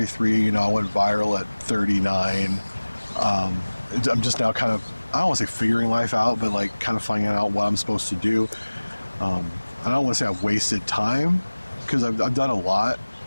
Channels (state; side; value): inverted; both; correlation -1.00